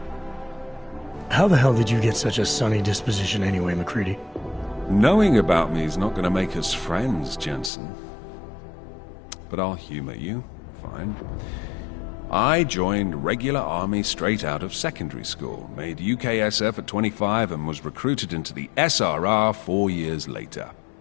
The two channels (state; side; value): drops out; right; at 7.7 s